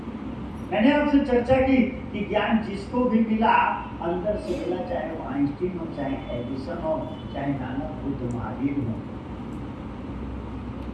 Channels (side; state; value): both; identical; correlation 1.00